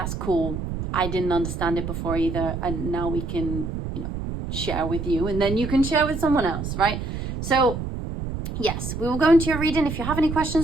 cool. I didn't understand it before either. And now we can, you know, share with you, and then you can share with someone else, right? So yes, we will go into your reading. If you have any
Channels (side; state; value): right; noise; rumble, 5 dB below the sound